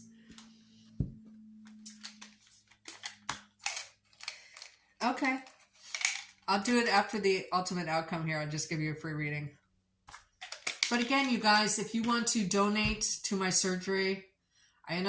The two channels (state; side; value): identical; both; correlation 1.00